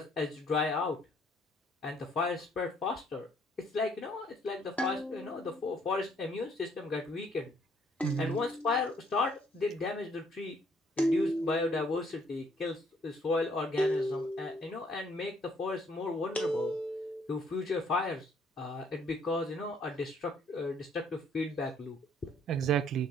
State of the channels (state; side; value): normal; both; correlation 0.65